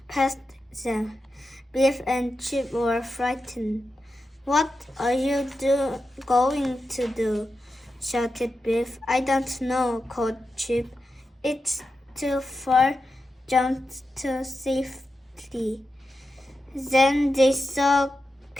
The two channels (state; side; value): normal; both; correlation 0.90